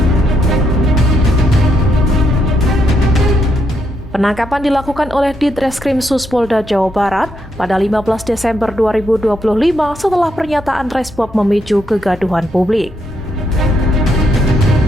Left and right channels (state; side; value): normal; both; correlation 0.78